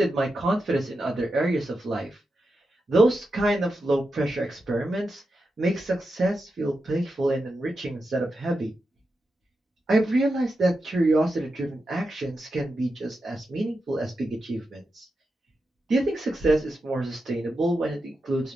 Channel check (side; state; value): both; normal; correlation 0.89